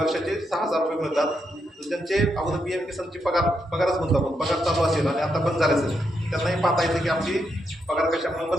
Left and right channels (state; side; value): normal; both; correlation 0.81